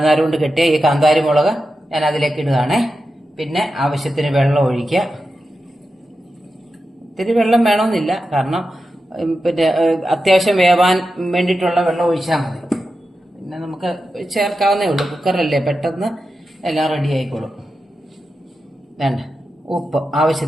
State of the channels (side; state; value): both; normal; correlation 0.90